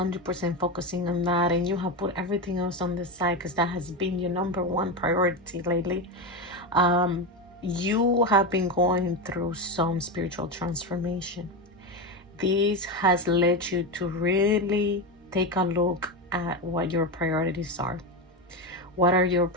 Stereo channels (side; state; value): both; normal; correlation 0.15